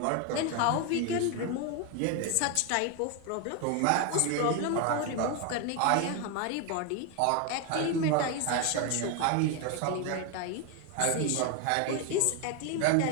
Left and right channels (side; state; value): both; different; correlation 0.01